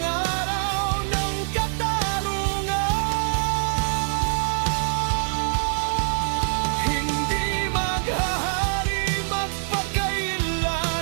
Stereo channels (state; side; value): silent; left; digital silence